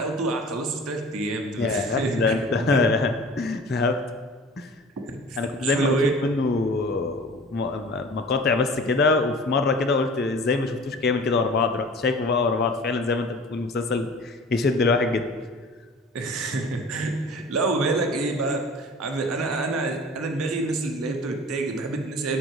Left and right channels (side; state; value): both; normal; correlation 0.42